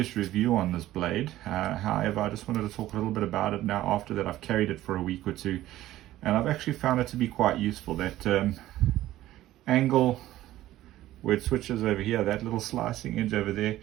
review on this blade. However, I just wanted to talk a little bit about it now after that I've carried it for a week or two, and I've actually found it to be quite useful. That angle where it switches over here, that little slicing edge over there,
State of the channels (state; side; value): quieter; left; 14.7 dB